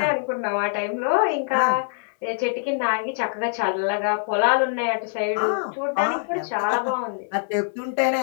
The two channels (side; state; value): right; silent; 60 dB below the other